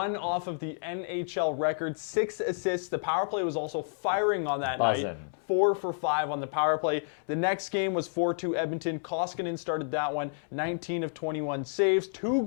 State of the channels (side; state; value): right; silent; digital silence